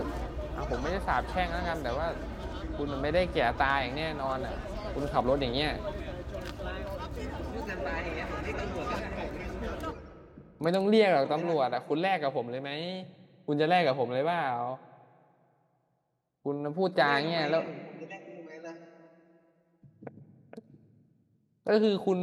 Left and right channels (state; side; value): identical; both; correlation 1.00